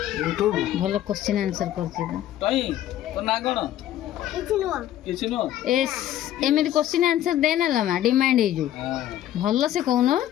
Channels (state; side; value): quieter; right; 12.5 dB